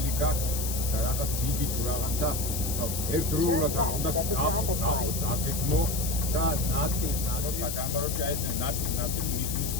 გაქვს და რაღაც დიდი თუ რაღაცა ერთდროულად უნდა დაგეგმო და ნაწილ და გამარჯვება აი ეს ნაწილ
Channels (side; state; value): left; noise; hiss, 4 dB below the sound